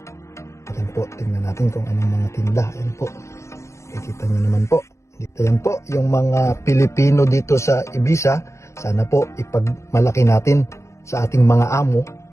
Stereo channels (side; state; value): right; late; 0.14 ms